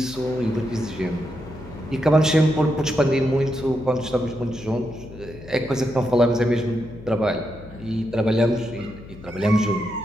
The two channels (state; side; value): noise; left; hum, 17 dB below the sound